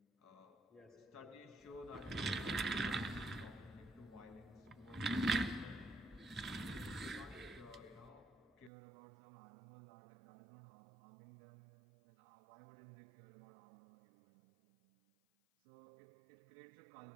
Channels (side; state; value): left; drops out; at 8.7 s